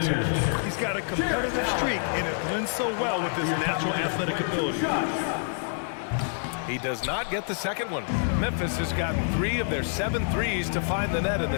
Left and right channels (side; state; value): right; silent; digital silence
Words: He's got a competitive streak, and it blends so well with his natural athletic ability. He does not get the second one. Memphis has gotten 3 of their 7 threes to find the net in